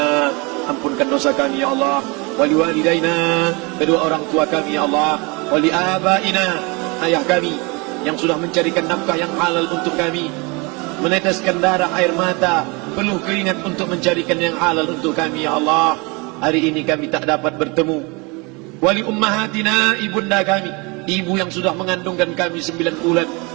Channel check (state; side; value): quieter; left; 28.3 dB